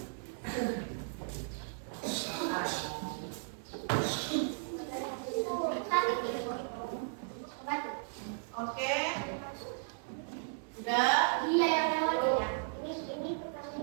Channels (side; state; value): left; silent; 54 dB below the other